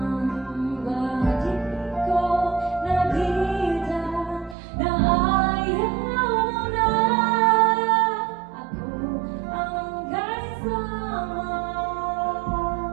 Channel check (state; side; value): drops out; left; at 4.5 s